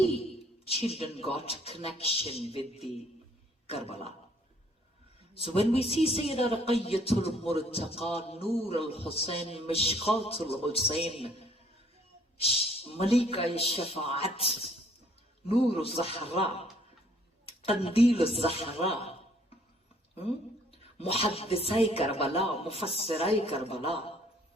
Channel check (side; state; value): both; normal; correlation 0.61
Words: children got connection with the Karbala. So when we see Sayyida Ruqayyatul Murtaqa, Noor al-Hussein, Mishqatul Hussein, Malika al-Shafa'at, Noor al-Zahra, Qandil al-Zahra, Muhaddisai Karbala, Mufassirai Karbala.